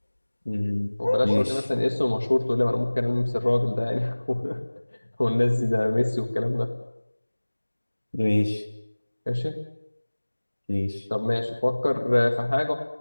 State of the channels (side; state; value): both; inverted; correlation -1.00